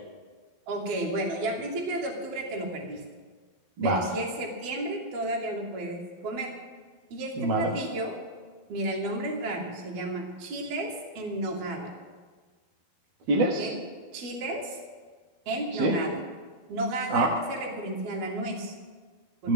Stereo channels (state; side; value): late; left; 12 ms